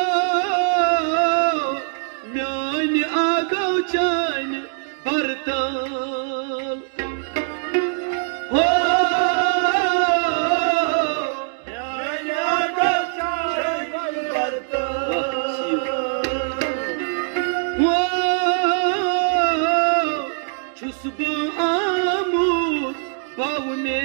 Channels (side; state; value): left; silent; 64 dB below the other